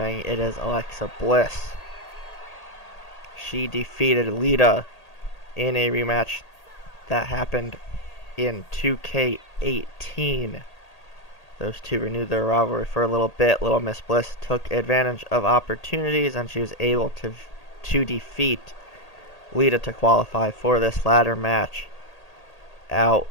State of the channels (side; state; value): right; late; 1.8 ms